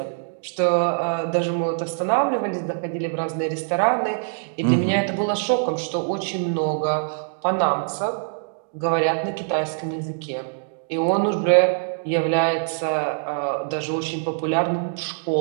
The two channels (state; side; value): silent; left; digital silence